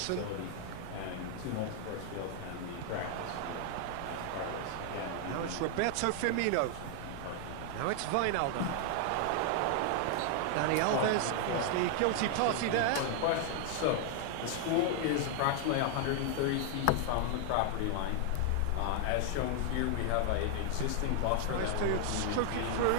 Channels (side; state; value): both; different; correlation 0.00